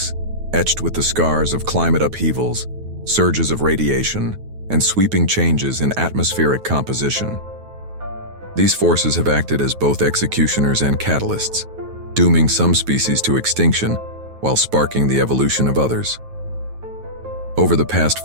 etched with the scars of climate upheavals, surges of radiation, and sweeping changes in atmospheric composition. These forces have acted as both executioners and catalysts, dooming some species to extinction while sparking the evolution of others. Over the past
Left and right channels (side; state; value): left; late; 9.3 ms